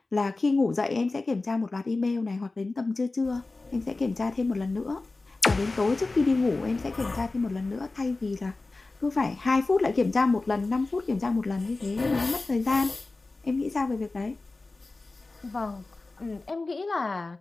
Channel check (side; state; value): right; quieter; 3.4 dB